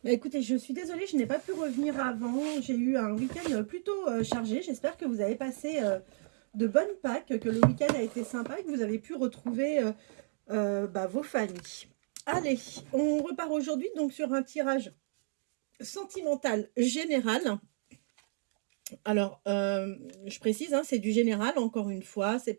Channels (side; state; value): left; silent; digital silence